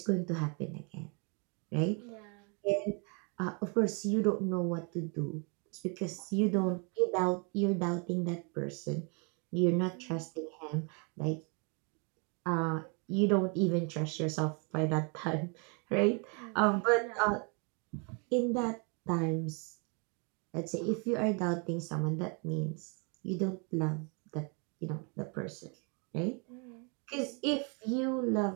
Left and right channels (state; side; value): quieter; left; 35.3 dB